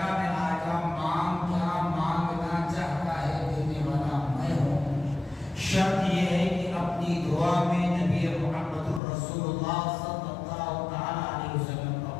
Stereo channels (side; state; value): right; drops out; at 9.0 s